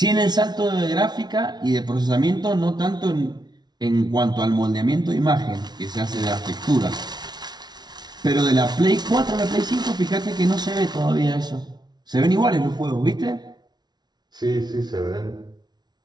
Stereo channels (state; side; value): late; left; 0.20 ms